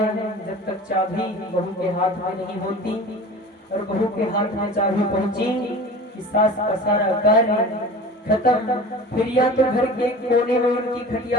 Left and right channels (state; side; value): normal; both; correlation 0.37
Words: जब तक चाबी बहू के हाथ में नहीं होती। और बहू के हाथ में चाबी पहुंची कि सास का सारा कार्य खत्म। फिर या तो घर के कोने में उनकी